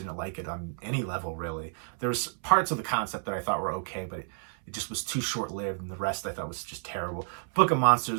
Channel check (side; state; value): left; silent; 58 dB below the other